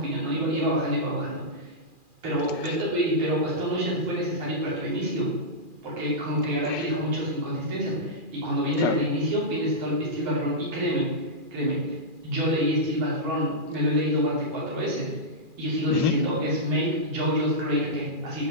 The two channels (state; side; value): late; left; 2.4 ms